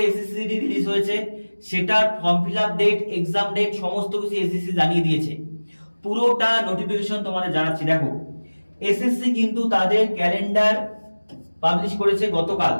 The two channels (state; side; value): inverted; both; correlation -1.00